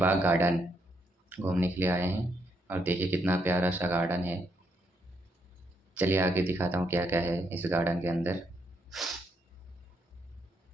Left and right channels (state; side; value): normal; both; correlation 0.77